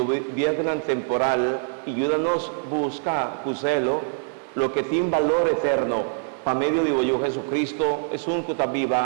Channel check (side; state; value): left; silent; 62 dB below the other